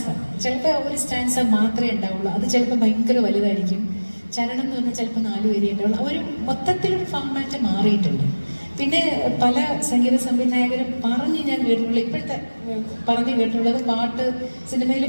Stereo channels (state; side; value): inverted; both; correlation -1.00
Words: ചിലപ്പോൾ ഒരു സ്റ്റാൻസ മാത്രമേ ഉണ്ടാവുള്ളൂ. അത് ചിലപ്പോൾ ഭയങ്കര വലുതായിരിക്കും. ചരണം എന്ന് പറഞ്ഞാൽ ചിലപ്പോൾ 4 വരി ഉണ്ടാവുള്ളൂ. ഒരു മൊത്തത്തിലൊരു ഫോമാറ്റ് മാറിയിട്ടുണ്ട്. പിന്നെ പല സംഗീത സംവിധായകരും ഞാൻ കേട്ടിട്ടുള്ള, ഇപ്പോഴത്തെ കേട്ടിട്ടുള്ളത്, സിനിമയിൽ